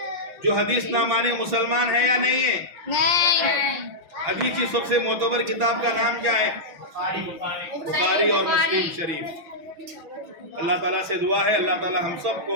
جو حدیث نہ مانے مسلمان ہے یا نہیں ہے؟ نہیں۔ حدیث کی سب سے معتبر کتاب کا نام کیا ہے؟ بخاری اور مسلم شریف۔ اللہ تعالیٰ سے دعا ہے اللہ تعالیٰ ہم سب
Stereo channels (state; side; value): late; left; 6.1 ms